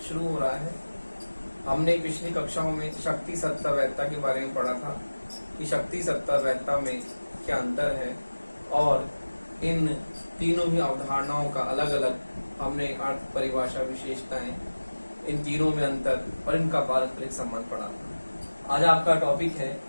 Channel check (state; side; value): inverted; both; correlation -1.00